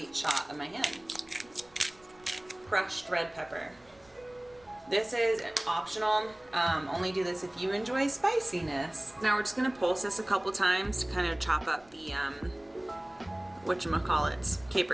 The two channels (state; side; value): noise; right; rumble, 29 dB below the sound